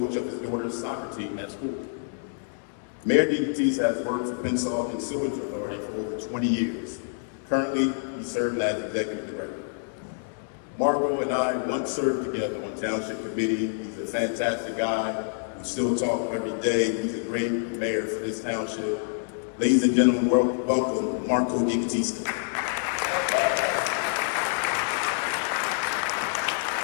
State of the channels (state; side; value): silent; right; digital silence